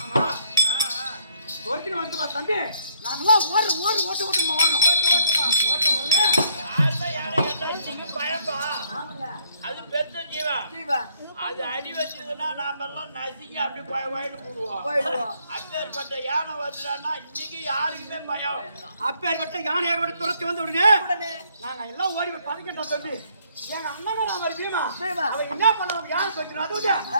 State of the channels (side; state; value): both; inverted; correlation -0.68